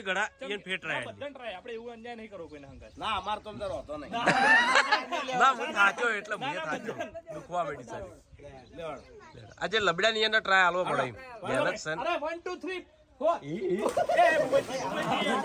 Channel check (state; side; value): identical; both; correlation 1.00